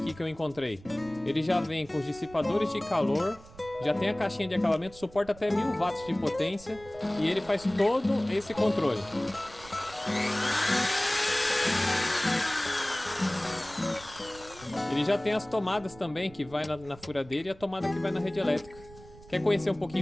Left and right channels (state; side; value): noise; right; rumble, 21 dB below the sound